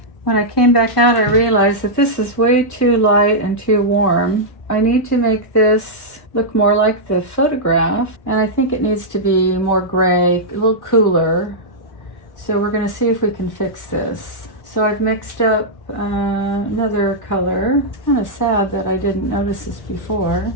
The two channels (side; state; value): right; late; 1.5 ms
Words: When I came back out, I realized that this is way too light and too warm. I need to make this look more like the photograph, and I think it needs to be more gray, a little cooler. So we're gonna see if we can fix this. So I've mixed up another color. It's kind of sad that I didn't notice this before,